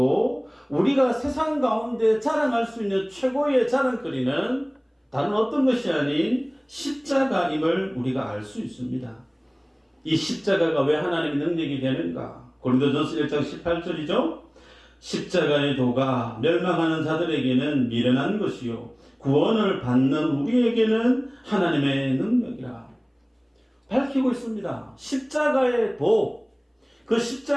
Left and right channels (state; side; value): identical; both; correlation 1.00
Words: 우리가 세상 가운데 자랑할 수 있는 최고의 자랑거리는 다른 어떤 것이 아닌 십자가임을 우리가 알 수 있습니다. 이 십자가가 왜 하나님의 능력이 되는가? 고린도전서 1장 18절이죠. 십자가의 도가 멸망하는 자들에게는 미련한 것이요 구원을 받는 우리에게는 하나님의 능력이라 밝히고 있습니다. 십자가의 도, 그